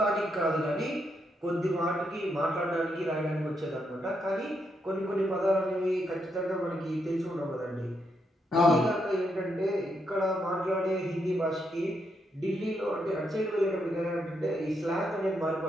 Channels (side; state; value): both; normal; correlation 0.79